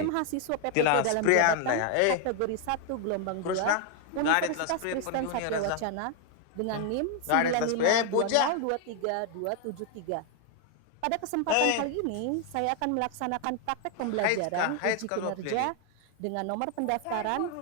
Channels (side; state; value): both; different; correlation 0.00